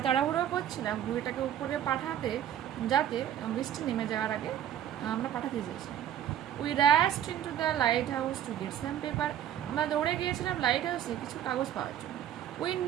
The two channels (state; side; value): quieter; left; 10.8 dB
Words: তাড়াহুড়ো করছিলাম ঘুড়িটাকে উপরে পাঠাতে, যাতে বৃষ্টি নেমে যাওয়ার আগে আমরা পাঠাতে চেয়েছিলাম। We rushed into the lighthouse to get some paper. আমরা দৌড়ে গিয়েছিলাম লাইট হাউসে কিছু কাগজ পাওয়ার জন্য। We